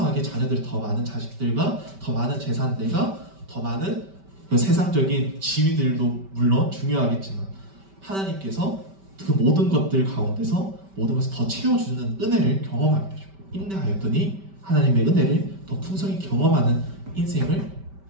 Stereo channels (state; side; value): late; left; 5.1 ms